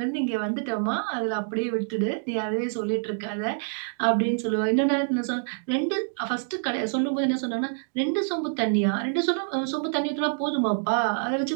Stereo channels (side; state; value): left; silent; 61 dB below the other